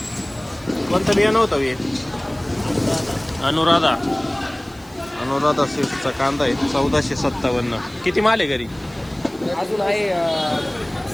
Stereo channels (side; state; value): right; noise; hiss, 26 dB below the sound